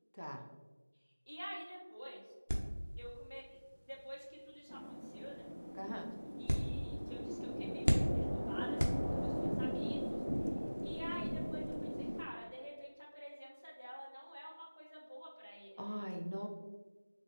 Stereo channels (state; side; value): inverted; both; correlation -1.00